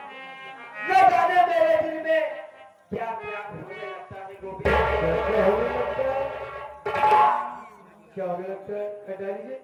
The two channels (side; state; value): both; identical; correlation 1.00